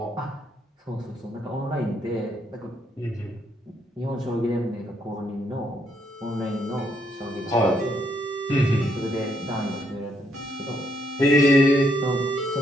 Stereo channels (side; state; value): both; normal; correlation 0.74